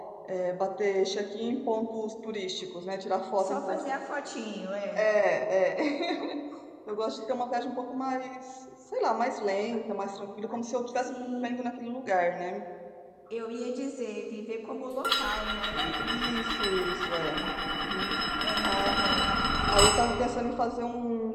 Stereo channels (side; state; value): both; identical; correlation 1.00